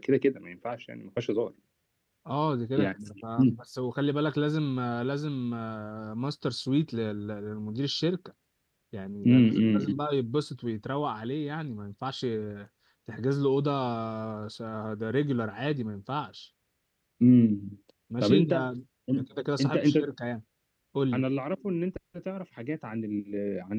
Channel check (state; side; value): identical; both; correlation 1.00